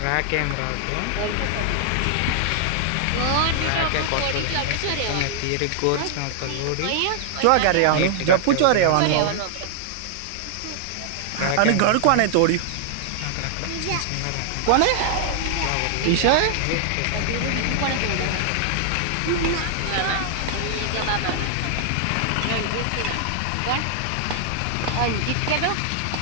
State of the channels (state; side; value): different; both; correlation -0.01